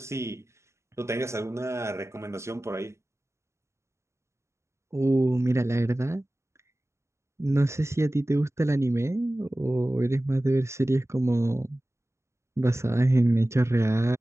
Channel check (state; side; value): late; left; 0.14 ms